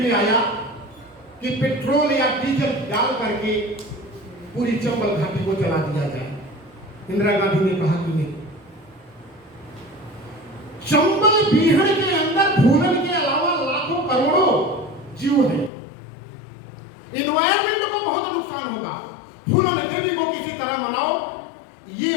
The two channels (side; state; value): right; drops out; at 15.7 s